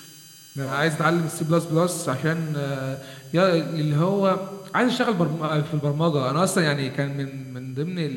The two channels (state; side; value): identical; both; correlation 1.00